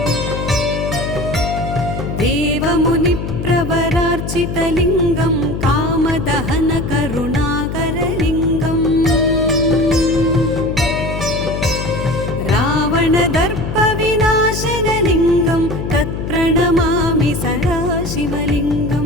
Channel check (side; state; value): left; noise; hum, 5 dB below the sound